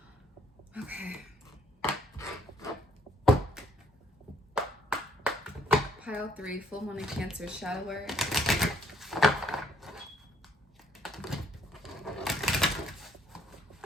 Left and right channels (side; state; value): both; normal; correlation 0.66